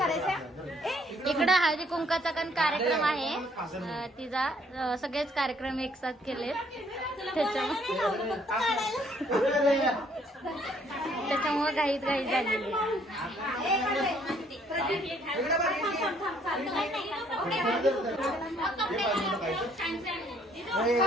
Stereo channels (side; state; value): both; normal; correlation 0.64